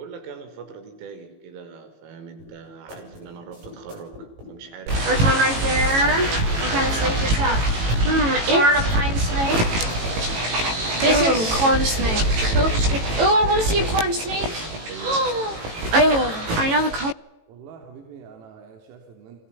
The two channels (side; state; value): left; late; 18 ms